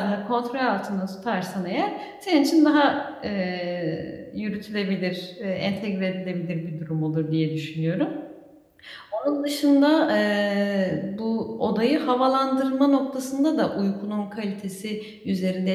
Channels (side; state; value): both; identical; correlation 1.00